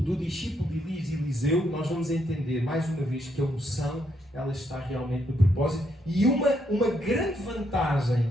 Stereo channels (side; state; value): both; normal; correlation 0.76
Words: do discípulo de Elias e Eliseu, nós vamos entender mais uma vez que a unção, ela está realmente no propósito. E uma grande vantagem